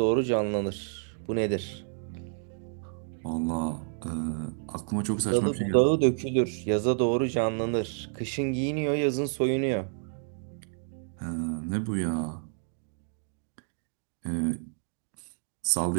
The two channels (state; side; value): silent; left; digital silence